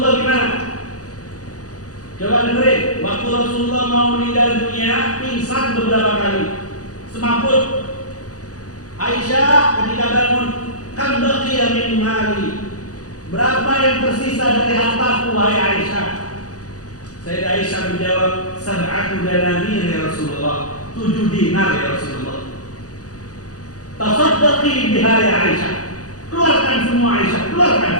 gimana? Coba dengerin. Waktu Rasulullah mau meninggal dunia, pingsan beberapa kali, semaput. Aisyah ketika bangun, kan baqiya min mali, berapa yang tersisa dari hartaku wahai Aisyah? Sayyidah Aisyah menjawab, 7 dananir ya Rasulullah, 7 dinar ya Rasulullah. Tasaddaqi biha ya Aisyah, keluarkan semua Aisyah, keluarkan,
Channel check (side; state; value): right; late; 0.67 ms